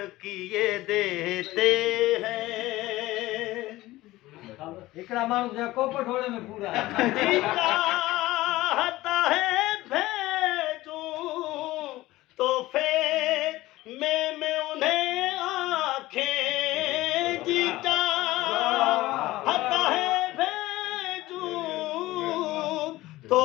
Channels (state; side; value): quieter; right; 17.8 dB